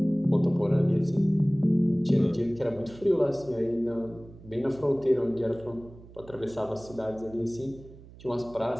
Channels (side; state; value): right; noise; hum, 20 dB below the sound